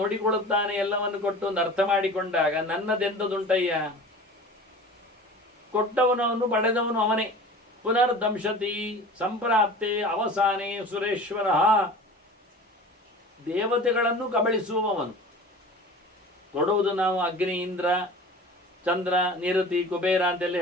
ಎಲ್ಲವನ್ನು ಕೊಟ್ಟು ಒಂದು ಅರ್ಥ ಮಾಡಿಕೊಂಡಾಗ ನನ್ನದೆಂತದುಂಟಯ್ಯ, ಕೊಟ್ಟವನವನು ಪಡೆದವನು ಅವನೇ. ಪುನರ್ದಂಶತಿ ಸಂಪ್ರಾಪ್ತೆ ಅವಸಾನೆ ಸುರೇಶ್ವರ, ದೇವತೆಗಳನ್ನು ಕಬಳಿಸುವವನು. ಕೊಡುವುದು ನಾವು ಅಗ್ನಿ, ಇಂದ್ರ, ಚಂದ್ರ, ನಿರತಿ, ಕುಬೇರ ಅಂತೆಲ್ಲ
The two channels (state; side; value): normal; both; correlation 0.39